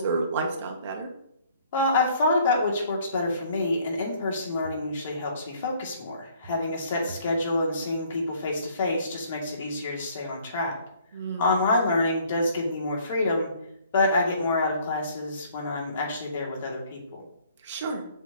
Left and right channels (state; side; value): inverted; both; correlation -0.60